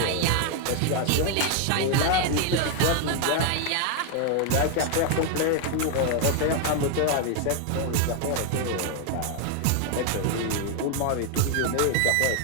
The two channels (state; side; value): different; both; correlation 0.00